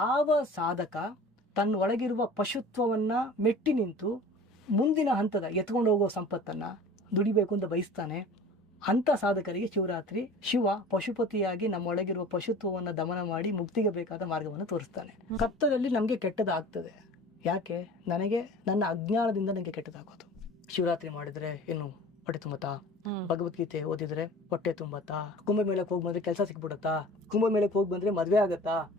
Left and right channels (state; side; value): normal; both; correlation 0.42